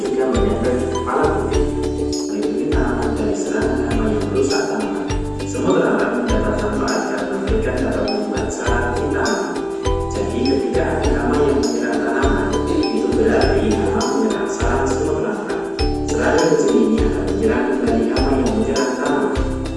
menempel di kepala putih. Melindungi tanaman dari serangan hama yang merusak tanaman. Semut lalat mendapat manfaat karena mereka dapat membuat sarang di tanaman. Jadi ketika ada hama yang menyerang tanaman, itu berarti hama menyerang sarang semut lalat. Serangga kecil ini akan menyerang kembali hama yang menyerang tanaman.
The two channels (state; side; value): identical; both; correlation 1.00